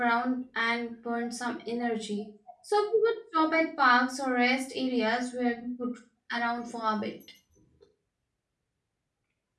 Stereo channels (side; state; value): both; identical; correlation 1.00